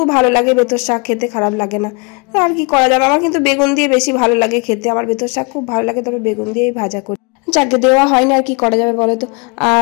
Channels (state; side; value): quieter; right; 32.0 dB